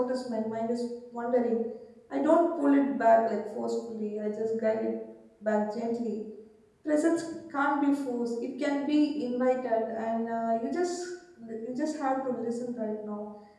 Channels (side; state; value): both; identical; correlation 1.00